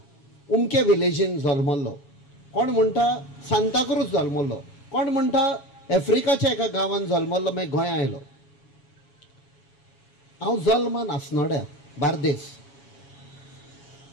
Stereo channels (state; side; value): late; right; 7.2 ms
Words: उमके विलेजीन जल्मल्लो, कोण म्हणटा सांताक्रूज जल्मल्लो, कोण म्हणटा आफ्रिकाच्या एका गांवांत जल्मल्लो मागीर गोंय आयलो। हांव जल्मान आसनोड्या बार्देस